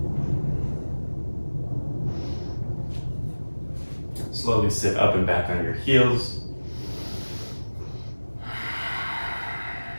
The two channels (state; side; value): inverted; both; correlation -1.00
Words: Slowly sit up and back on your heels.